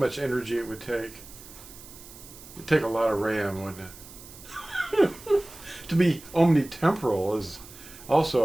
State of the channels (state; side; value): noise; right; hiss, 18 dB below the sound